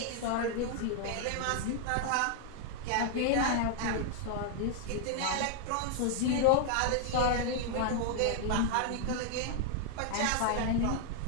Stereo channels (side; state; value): both; different; correlation 0.00